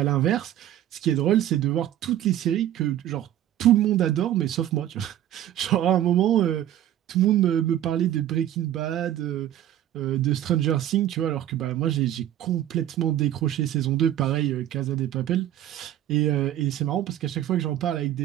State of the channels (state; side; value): quieter; left; 12.0 dB